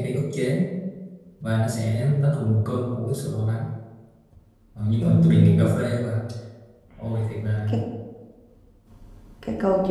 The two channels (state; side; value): identical; both; correlation 1.00